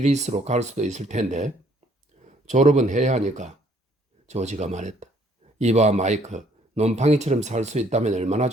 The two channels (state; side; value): normal; both; correlation 0.63